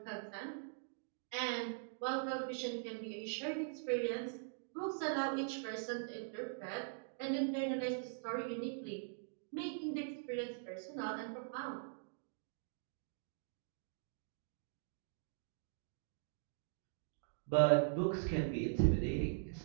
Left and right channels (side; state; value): left; silent; digital silence